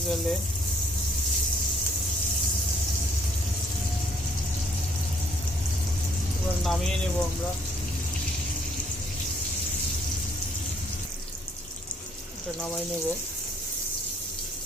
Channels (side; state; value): both; normal; correlation 0.64